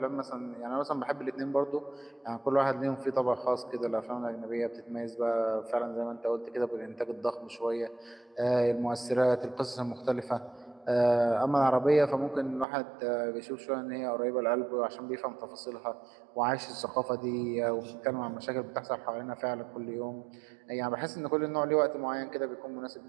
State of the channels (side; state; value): left; drops out; at 12.7 s